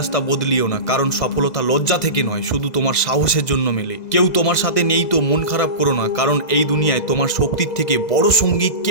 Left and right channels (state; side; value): late; right; 2.0 ms